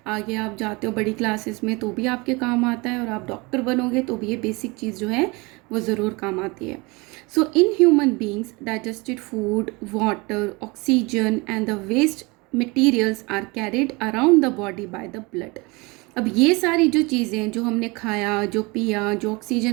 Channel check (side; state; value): left; quieter; 26.0 dB